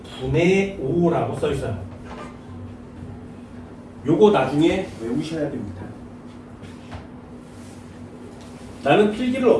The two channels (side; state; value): both; identical; correlation 1.00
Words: 분의 5라고 써있어요. 요거 나중에 외우셔야 됩니다. 나는 필기를